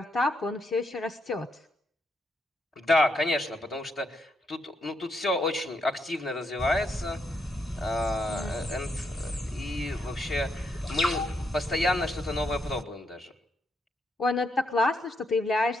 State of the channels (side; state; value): both; normal; correlation 0.78